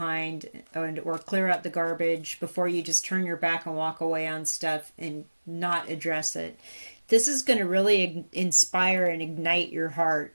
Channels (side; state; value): both; inverted; correlation -1.00